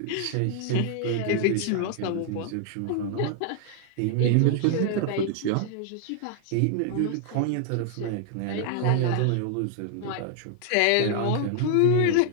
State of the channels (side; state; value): both; different; correlation 0.00